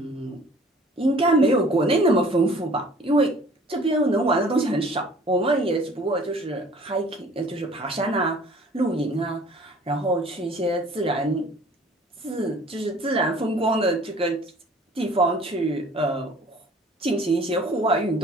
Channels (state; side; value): normal; both; correlation 0.51